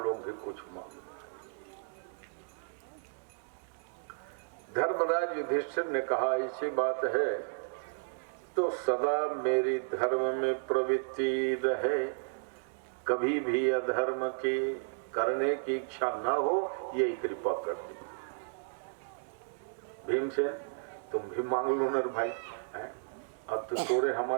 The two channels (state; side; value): silent; left; digital silence